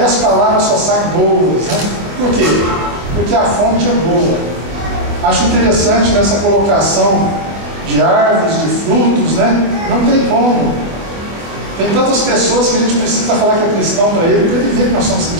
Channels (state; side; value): late; left; 24 ms